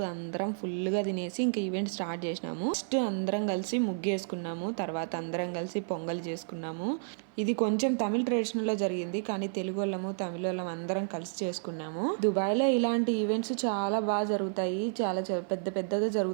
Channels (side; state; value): left; silent; 57 dB below the other